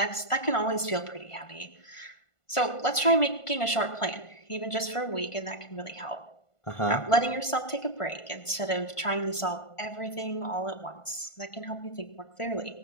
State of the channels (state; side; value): late; right; 1.5 ms